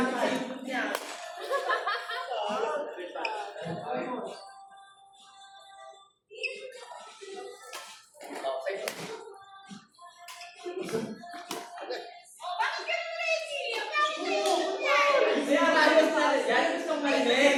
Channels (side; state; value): both; identical; correlation 1.00